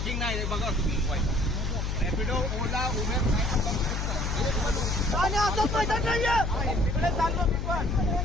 नाही बघा तुम्ही रॅपिडो ओला उबेर आणि असं पैसा नाहीये. तिकडे चाललो मी पण.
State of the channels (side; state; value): left; noise; hum, 1 dB below the sound